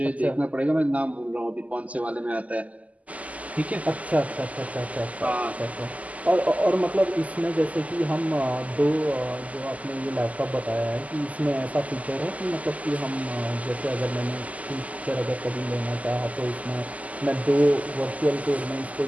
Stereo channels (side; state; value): left; late; 0.072 ms